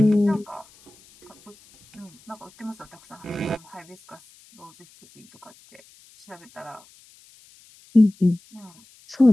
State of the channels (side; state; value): left; noise; hiss, 27 dB below the sound